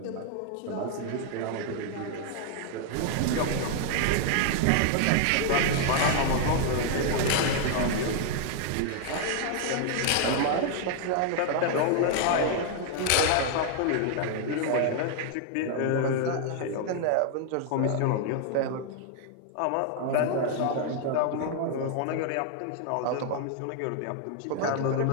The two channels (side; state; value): both; different; correlation 0.00